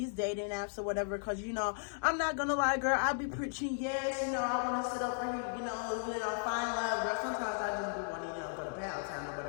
dating apps or whatever. Because, you know, I'm not going to lie, girl. I be preaching, yes, you know, I want to sit over here, you know, find love, girl. Sometimes I just be wanting, you know, go to Pound Town or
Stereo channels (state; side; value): silent; right; digital silence